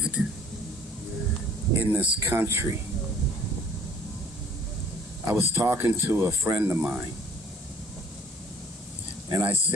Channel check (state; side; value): normal; both; correlation 0.55